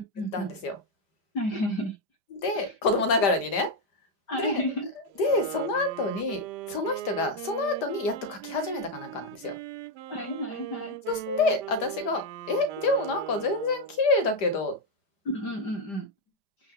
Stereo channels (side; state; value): right; late; 5.0 ms